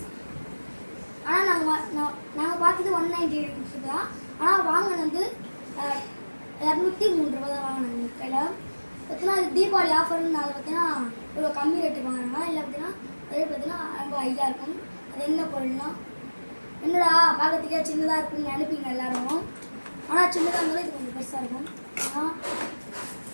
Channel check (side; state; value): both; inverted; correlation -1.00